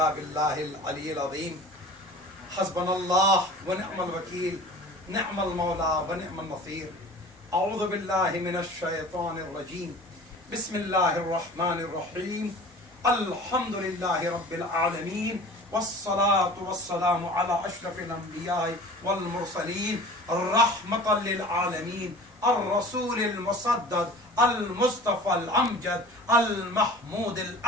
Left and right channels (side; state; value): both; normal; correlation 0.42